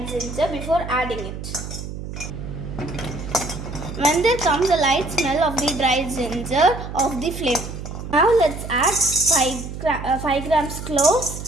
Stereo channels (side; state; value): right; noise; hum, 8 dB below the sound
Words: ginger before adding it. When there comes a light smell of the dry ginger off the flame. Now let's add 5 grams